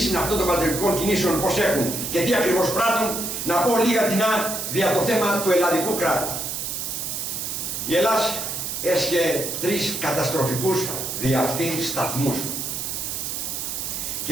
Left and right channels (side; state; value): right; noise; hiss, 4 dB below the sound